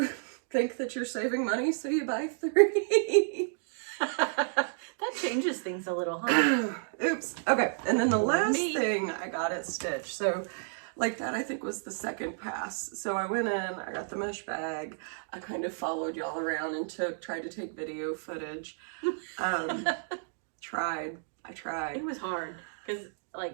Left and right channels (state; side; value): silent; left; digital silence